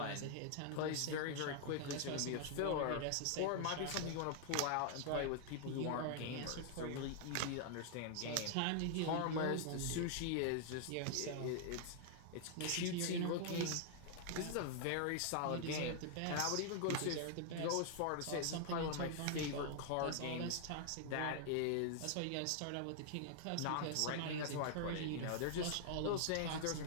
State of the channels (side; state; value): both; different; correlation 0.00